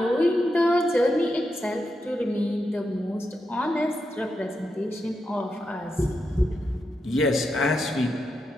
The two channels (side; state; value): both; normal; correlation 0.86